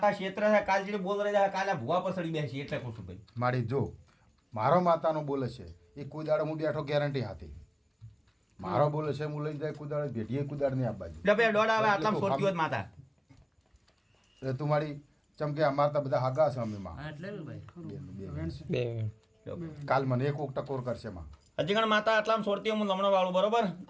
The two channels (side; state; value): both; identical; correlation 1.00